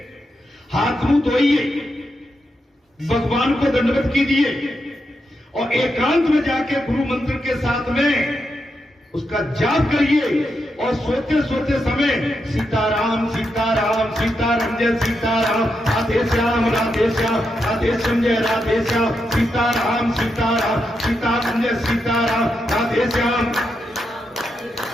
हाथ मुंह धोइए, भगवान को दंडवत कीजिए और एकांत में जाके गुरु मंत्र के साथ में उसका जाप करिए और सोते सोते समय सीताराम सीताराम सीताराम जय सीताराम, राधे श्याम राधे श्याम, राधे श्याम जय राधे श्याम, सीताराम सीताराम सीताराम जय सीताराम, राधे श्याम,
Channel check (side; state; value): both; normal; correlation 0.84